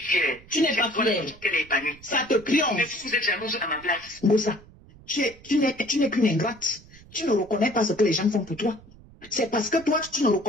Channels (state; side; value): noise; right; rumble, 23 dB below the sound